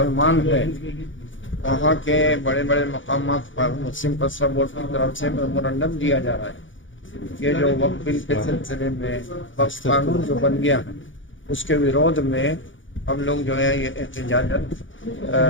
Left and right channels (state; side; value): late; right; 0.56 ms